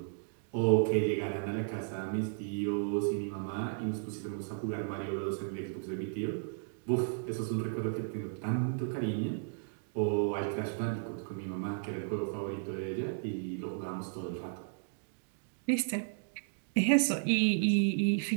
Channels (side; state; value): left; silent; digital silence